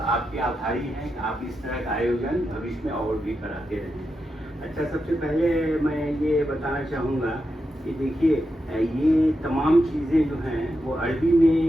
आपके आभारी हैं कि आप इस तरह का आयोजन भविष्य में और भी कराते रहें। अच्छा, सबसे पहले मैं ये बताना चाहूँगा कि देखिए ये तमाम चीज़ें जो हैं वो अरबी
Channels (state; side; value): normal; both; correlation 0.87